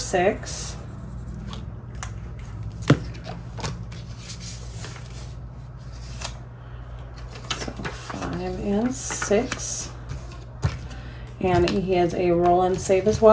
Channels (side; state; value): both; identical; correlation 1.00